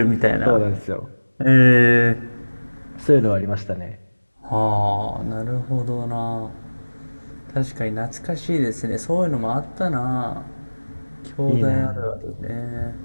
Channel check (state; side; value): inverted; both; correlation -1.00